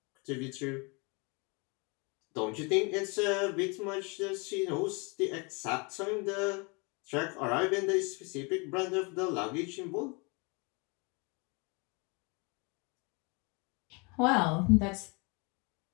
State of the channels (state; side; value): quieter; right; 30.9 dB